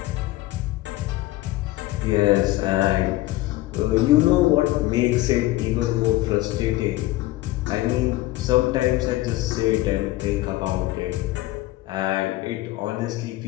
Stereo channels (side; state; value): right; quieter; 17.4 dB